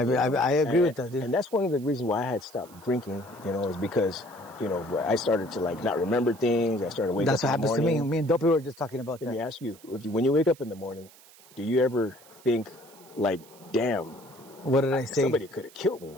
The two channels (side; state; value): right; noise; hiss, 24 dB below the sound